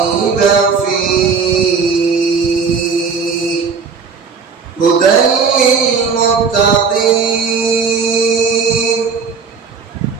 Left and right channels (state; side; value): quieter; left; 5.5 dB